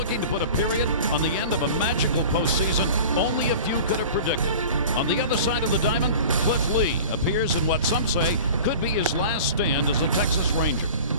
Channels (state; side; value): inverted; both; correlation -0.39